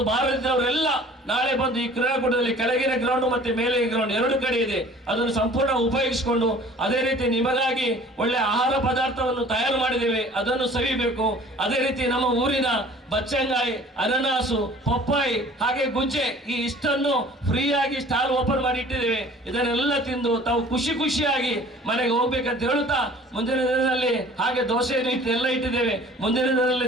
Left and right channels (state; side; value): normal; both; correlation 0.49